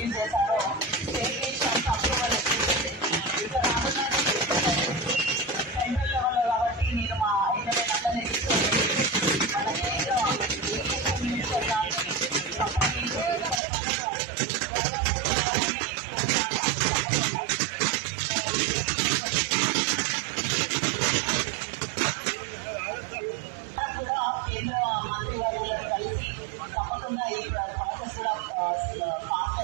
చేశారో అప్రూవల్ ఇక రానున్న సెంట్రల్ లెవెల్లో కాబట్టి నేను మా ఎమ్మెల్యే అందరినీ తీసుకొని మన కేంద్ర మినిస్టర్ గారిని కేంద్ర మంత్రివర్యులను కలిసి తప్పకుండా ఈ ప్రాసెస్ కూడా ఫాస్ట్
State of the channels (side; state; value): left; drops out; at 13.6 s